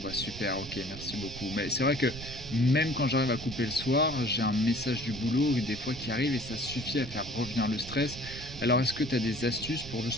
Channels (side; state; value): right; noise; rumble, 12 dB below the sound